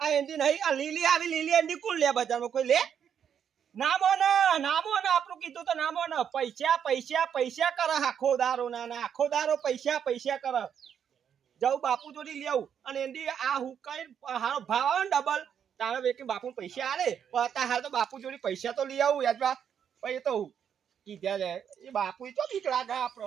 એન્ડી નહીં આ લીલી આવી લીલી એન્ડી કોણ લે બજારમાં કોઈ લે નામો ને આપણું કીધું તો નામો ને પૈસા કરે આખો દારો ના આખો દારો પૈસા કરે જાઉં બાપુ જોડી લેવું અને એન્ડી આ હુકાઈ હારો ભાવ આવે ને ડબલ તારે વેકે બાપુ પૈસા આલે પણ હાલ તો બાપુ જોડી પૈસા તો લઈ આવું યાદ પછી તો કીધા જાય એ બાપુ તો બીક લાગે આપણો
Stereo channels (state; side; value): quieter; left; 8.3 dB